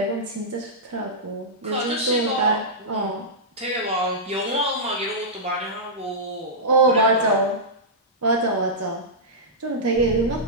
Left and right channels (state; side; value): normal; both; correlation -0.13